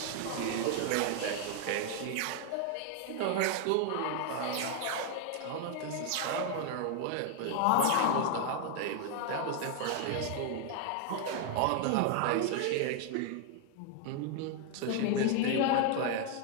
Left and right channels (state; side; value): different; both; correlation 0.00